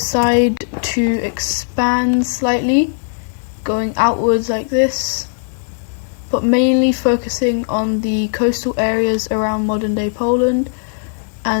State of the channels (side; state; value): right; silent; digital silence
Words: to expand slightly, going outwards like this, but mainly focusing on the coastal areas around modern-day Poland